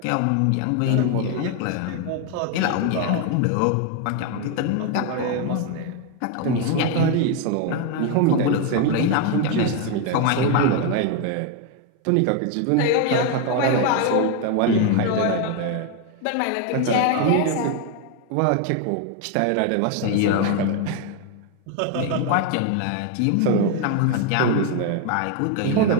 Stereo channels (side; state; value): both; different; correlation 0.01